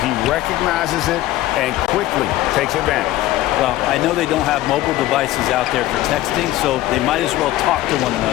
He recognizes it and quickly takes advantage. Well, I know they don't have mobile devices out there for texting, so they might as well talk to one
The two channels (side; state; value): right; quieter; 15.4 dB